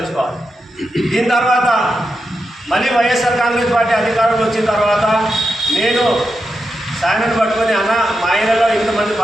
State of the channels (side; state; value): both; normal; correlation 0.87